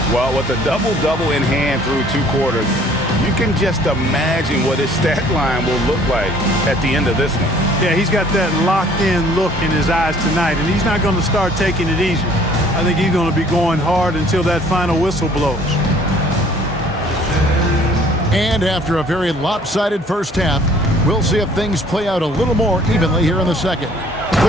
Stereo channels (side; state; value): both; normal; correlation 0.56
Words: Well, with a double-double in hand through 2 quarters, you can just imagine what his stat line will look like at the end of this one. Yeah, he's got that locked-in look in his eyes tonight, and he's not going to start taking it easy. I think he's going to be going hard until that final whistle blows. And after a very lopsided first half, we'll see if things play out a little more evenly here in the second. The